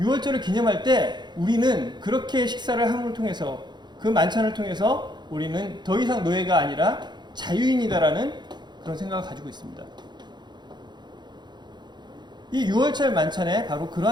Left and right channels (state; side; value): late; left; 0.21 ms